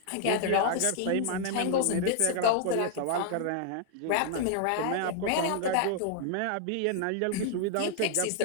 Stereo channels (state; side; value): different; both; correlation -0.01